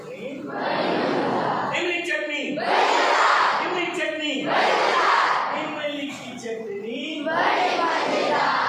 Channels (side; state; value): both; identical; correlation 1.00